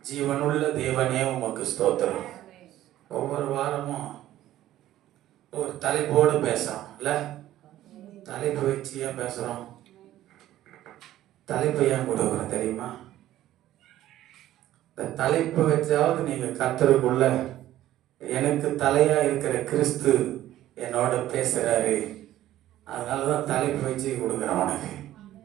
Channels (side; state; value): left; quieter; 13.8 dB